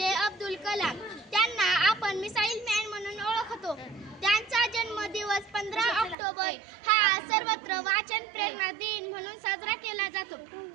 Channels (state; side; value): drops out; left; at 6.2 s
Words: अब्दुल कलाम, त्यांना आपण मिसाईल मॅन म्हणून ओळखतो. त्यांचा जन्मदिवस 15 ऑक्टोबर हा सर्वत्र वाचन प्रेरणा दिन म्हणून साजरा केला जातो.